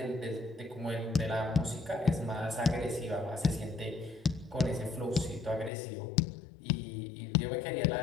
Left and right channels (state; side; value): drops out; right; at 5.7 s